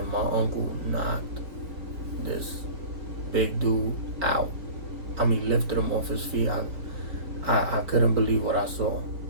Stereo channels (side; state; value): left; late; 4.2 ms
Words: my uncle knocked this big dude out. I mean, lifted him off his feet. I couldn't believe what I saw.